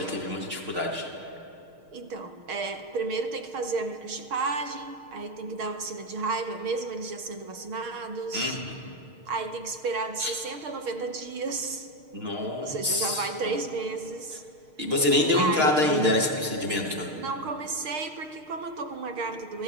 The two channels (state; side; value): late; left; 6.5 ms